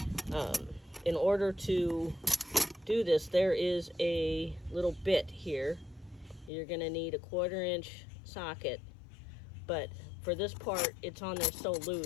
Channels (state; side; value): drops out; right; at 6.5 s